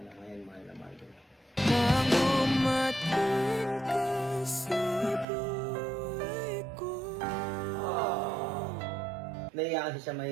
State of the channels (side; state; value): left; drops out; at 5.2 s